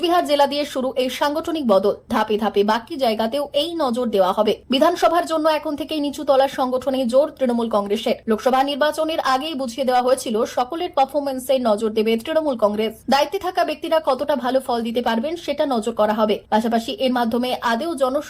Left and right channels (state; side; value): identical; both; correlation 1.00